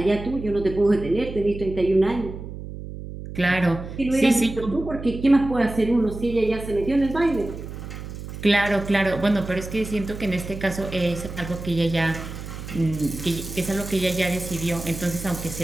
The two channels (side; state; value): right; noise; hum, 10 dB below the sound